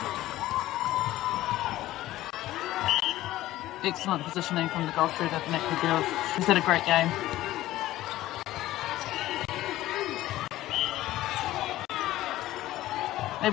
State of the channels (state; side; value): quieter; right; 15.5 dB